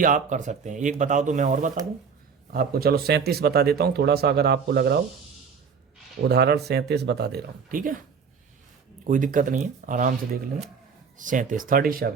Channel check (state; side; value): quieter; left; 6.1 dB